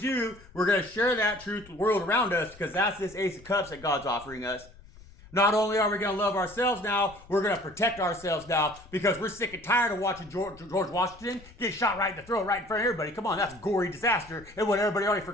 we're going to share that truth with the world around us, because that's this Ace of Cups that God's offering us. Not only are we going to love ourselves now, we're going to protect ourselves now, because we're sick and tired of watching George Washington get shot right in the throat, right in front of everybody. Come on, that's a gory disaster. And what, everybody already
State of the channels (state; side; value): noise; left; rumble, 22 dB below the sound